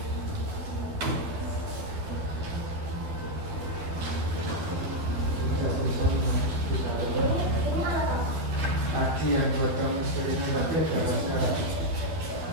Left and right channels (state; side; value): late; left; 12 ms